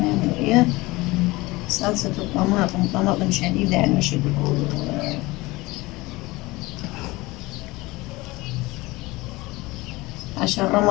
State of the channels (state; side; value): quieter; right; 21.3 dB